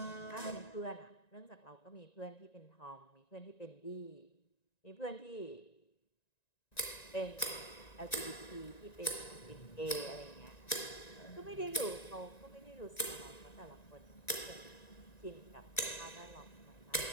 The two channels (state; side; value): late; right; 1.9 ms